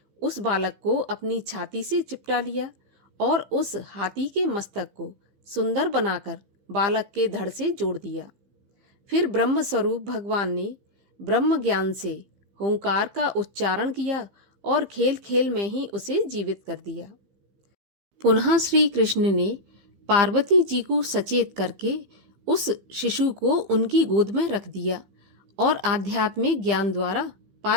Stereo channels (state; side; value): late; left; 15 ms